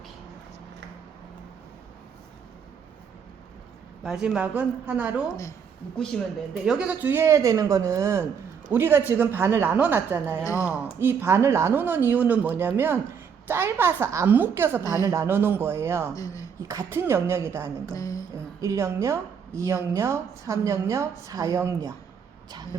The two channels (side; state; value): left; quieter; 6.9 dB